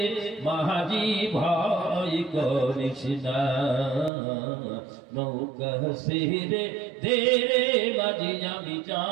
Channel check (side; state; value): left; drops out; at 4.1 s